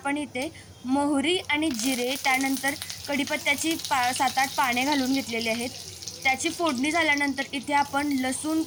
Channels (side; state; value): both; identical; correlation 1.00